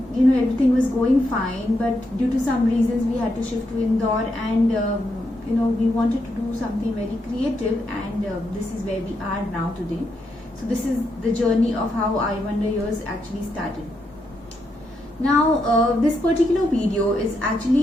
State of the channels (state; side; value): normal; both; correlation 0.81